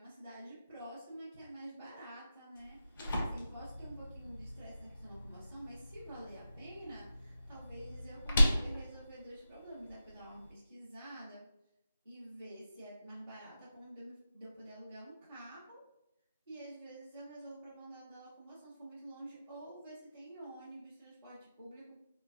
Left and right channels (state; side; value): inverted; both; correlation -0.92